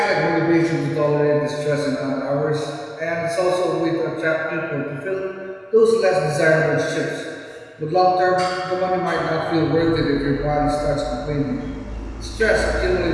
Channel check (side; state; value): both; identical; correlation 1.00